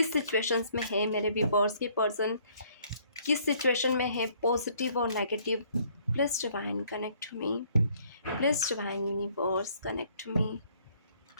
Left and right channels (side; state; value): both; inverted; correlation -0.62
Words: सिचुएशंस में है मेरे व्यूअर्स की पर्सन, किस सिचुएशन में है, पॉजिटिव और negative. Please divine connect to me, please divine universe connect to me,